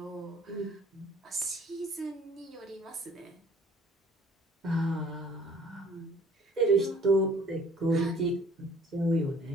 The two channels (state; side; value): normal; both; correlation 0.55